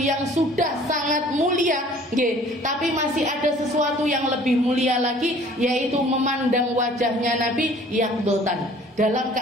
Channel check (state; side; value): normal; both; correlation 0.52